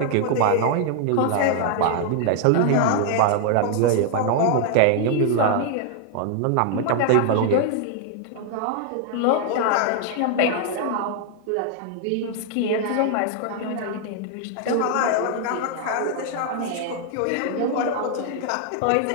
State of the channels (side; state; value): both; different; correlation 0.00